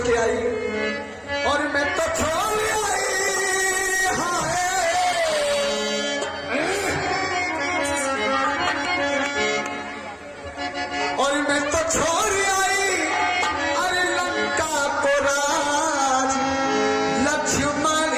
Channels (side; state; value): both; identical; correlation 1.00